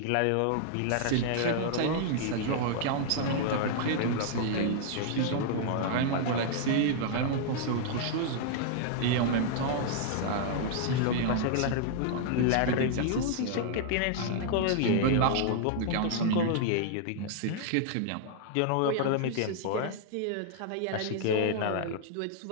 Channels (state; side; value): different; both; correlation -0.01